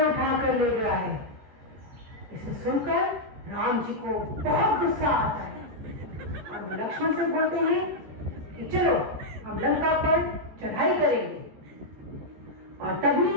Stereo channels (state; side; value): late; left; 14 ms